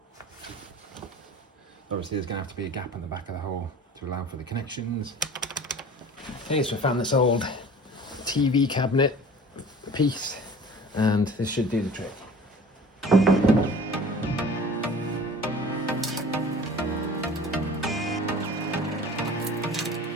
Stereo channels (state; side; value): normal; both; correlation 0.43